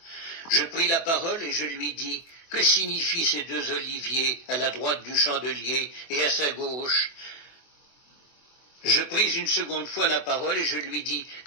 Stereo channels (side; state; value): right; late; 24 ms